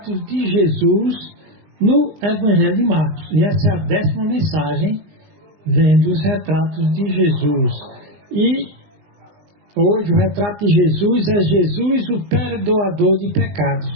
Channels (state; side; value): late; left; 20 ms